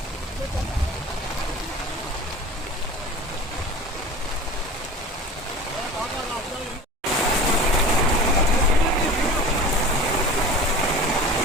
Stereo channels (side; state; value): both; normal; correlation 0.36